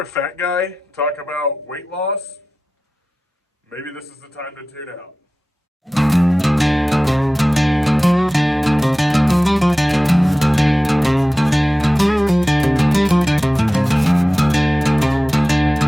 fat guy talk about weight loss, maybe this is the time to tune out.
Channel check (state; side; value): normal; both; correlation 0.95